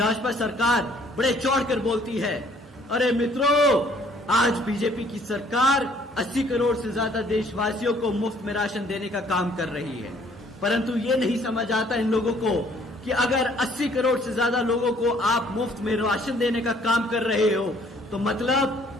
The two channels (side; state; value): both; normal; correlation 0.60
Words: सरकार बड़े चौड़कर बोलती है, अरे मित्रों, आज बीजेपी की सरकार 80 करोड़ से ज्यादा देशवासियों को मुफ्त में राशन देने का काम कर रही है। परंतु ये नहीं समझ आता इन लोगों को कि अगर 80 करोड़ से ज्यादा लोगों को आप मुफ्त में राशन देने का काम कर रहे हो तो